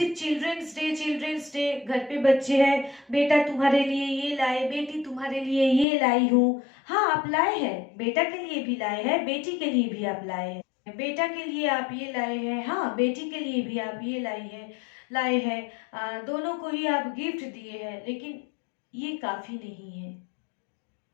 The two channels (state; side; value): drops out; right; at 5.9 s